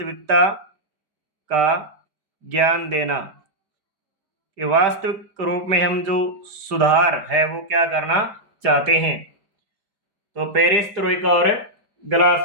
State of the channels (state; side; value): late; left; 5.1 ms